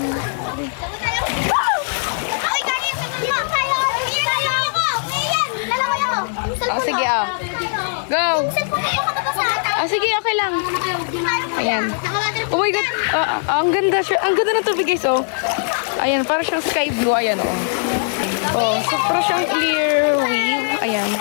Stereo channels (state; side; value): silent; right; digital silence